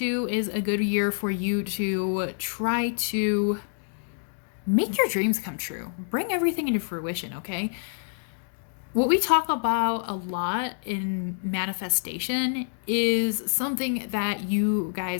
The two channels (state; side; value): silent; right; digital silence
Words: is a good year for you to try to make your dreams come true. Bring everything into fruition, okay? What we talk about a lot in manifestation is something that you